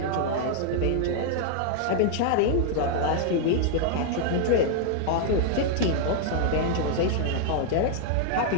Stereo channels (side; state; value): both; different; correlation -0.01